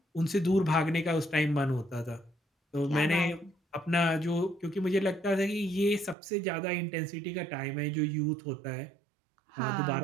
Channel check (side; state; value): left; drops out; at 6.2 s